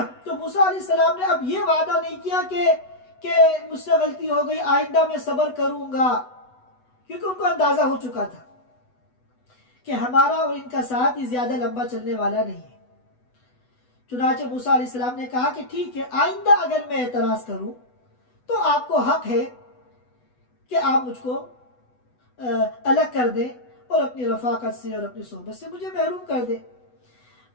تو موسیٰ علیہ السلام نے اب یہ وعدہ نہیں کیا کہ مجھ سے غلطی ہو گئی، آئندہ میں صبر کروں گا، کیونکہ ان کو اندازہ ہو چکا تھا کہ ہمارا اور ان کا ساتھ ہی زیادہ لمبا چلنے والا نہیں ہے. چنانچہ موسیٰ علیہ السلام نے کہا کہ ٹھیک ہے، آئندہ اگر میں اعتراض کروں تو آپ کو حق ہے کہ آپ مجھ کو الگ کر دیں اور اپنی رفاقت سے اور اپنی صحبت سے مجھے محروم کر دیں.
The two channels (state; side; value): late; right; 8.1 ms